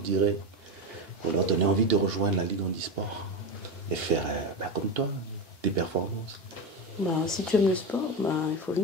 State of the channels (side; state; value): both; normal; correlation 0.18